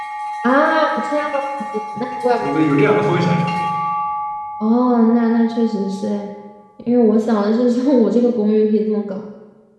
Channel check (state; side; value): identical; both; correlation 1.00